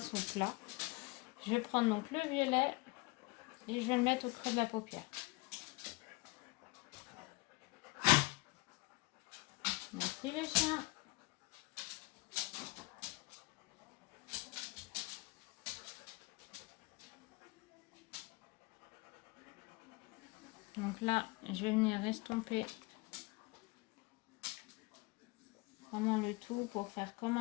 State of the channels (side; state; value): right; quieter; 25.2 dB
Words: plat. Je vais prendre donc le violet et je vais le mettre au creux de la paupière. Merci le chien. Donc là, je vais venir estomper vraiment le tout pour faire comme